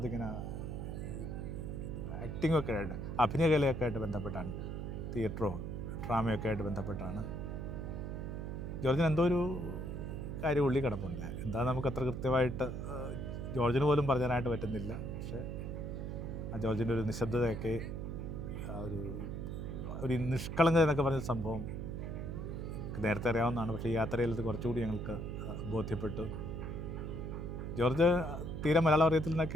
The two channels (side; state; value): right; noise; hum, 5 dB below the sound